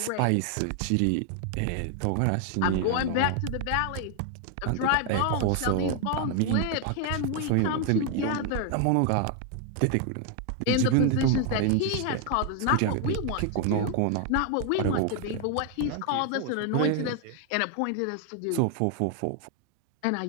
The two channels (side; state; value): both; different; correlation 0.00